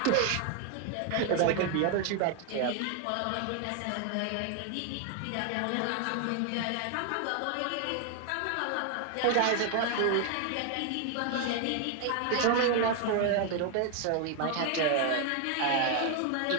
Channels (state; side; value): different; both; correlation 0.01